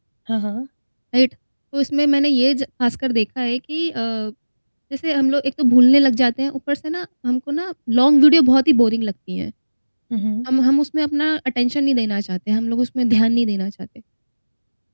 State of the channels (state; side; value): inverted; both; correlation -1.00